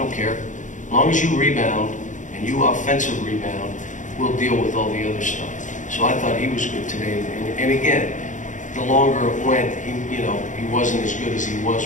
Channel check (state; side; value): late; right; 0.36 ms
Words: care. As long as you rebound and you offensive rebound, we'll deal with all the other stuff. So I thought he was good today. And again, the longer it went, he wasn't as good as he was